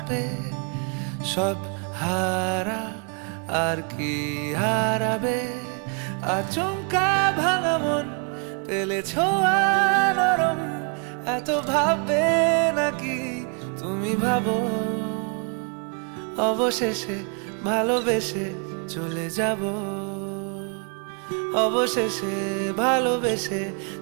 কাঁপে, সব হারা আর কি হারাবে। আচমকা ভাঙা মন পেলে ছোঁয়া নরম, এত ভাববে নাকি তুমি ভাবো। অবশেষে ভালোবেসে চলে যাব, অবশেষে ভালোবেসে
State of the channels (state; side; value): quieter; left; 39.1 dB